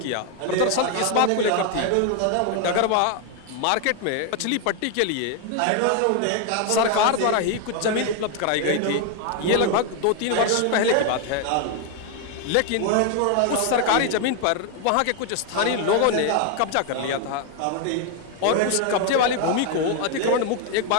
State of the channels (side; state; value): both; different; correlation 0.01